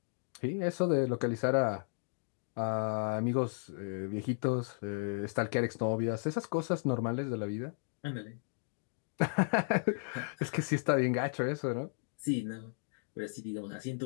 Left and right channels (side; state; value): right; silent; digital silence